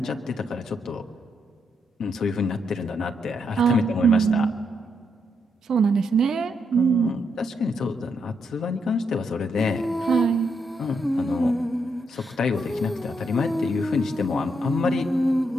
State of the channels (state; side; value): normal; both; correlation 0.79